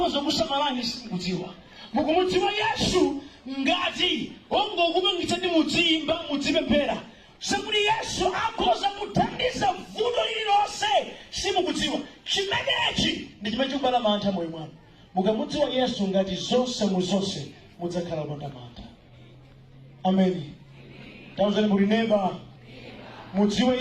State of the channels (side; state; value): both; identical; correlation 1.00